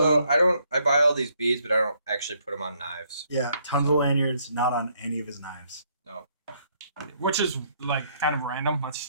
I buy all these beads, but I don't actually put them on knives. Yeah, tons of lanyards, not on any of his knives. No. Which is like kind of random.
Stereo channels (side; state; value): both; inverted; correlation -0.70